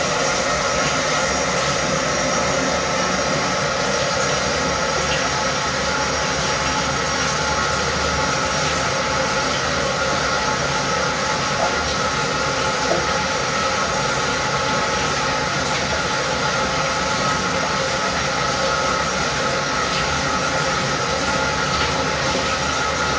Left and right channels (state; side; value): identical; both; correlation 1.00